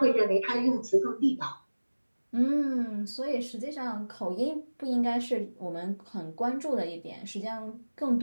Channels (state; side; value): inverted; both; correlation -1.00